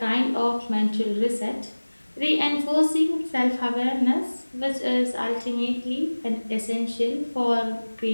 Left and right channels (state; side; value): inverted; both; correlation -1.00